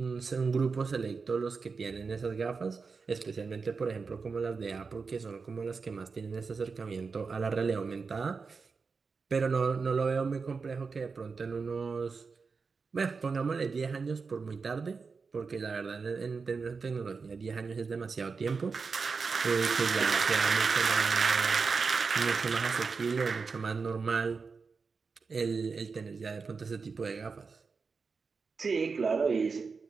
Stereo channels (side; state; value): left; quieter; 4.9 dB